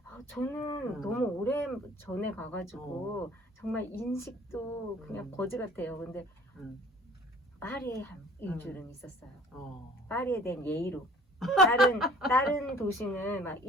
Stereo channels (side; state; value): both; normal; correlation 0.52